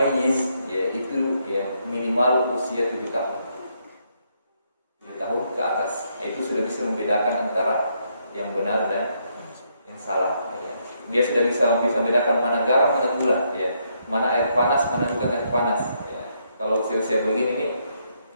ya, itu ya, minimal usia 7 tahun. 7 tahun ke atas. Itu sudah bisa membedakan antara yang benar dan yang salah. Dia sudah bisa membedakan mana garam, mana gula, ya, mana air panas, mana bukan air panas. Ya. Kalau usia-usia begini ini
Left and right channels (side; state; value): both; inverted; correlation -0.75